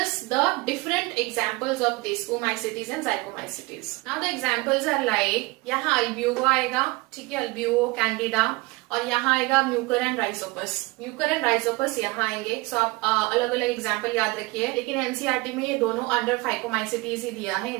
the different examples of this oomaisities and zygomycetes. Now the examples are like, यहाँ अल्ब्यूगो आएगा, ठीक है, अल्ब्यूगो कैंडिडा, और यहाँ आएगा mucor and rhizopus. Mucor and rhizopus यहाँ आएंगे। सो आप अलग अलग एग्जांपल याद रखिए, लेकिन एनसीईआरटी में ये दोनों अंडर फाइकोमाइसिटीज ही दिया है।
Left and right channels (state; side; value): quieter; left; 23.4 dB